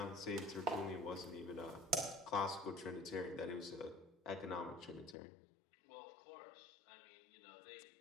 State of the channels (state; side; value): drops out; right; at 5.2 s